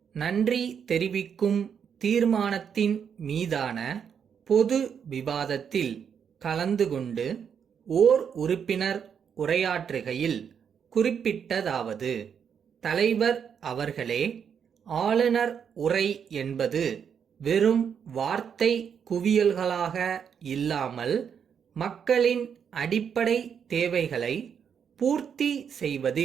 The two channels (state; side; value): quieter; left; 7.5 dB